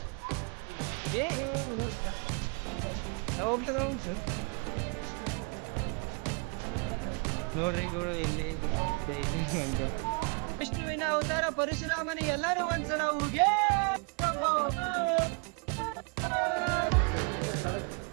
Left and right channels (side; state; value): left; quieter; 36.1 dB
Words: ನೋಡ್ರಿ ಗೌಡ, ಇಲ್ಲಿ ವಿಷ್ಣುವಿನ ಅವತಾರ ಪರಶುರಾಮನ ಎಲ್ಲರೂ ಒಂದ್ಸಲ ಹೋಗಿ